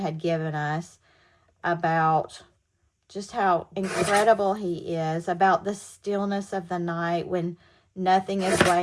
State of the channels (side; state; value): both; identical; correlation 1.00